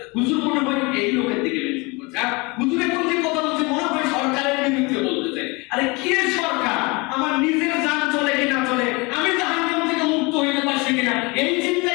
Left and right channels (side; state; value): right; quieter; 26.8 dB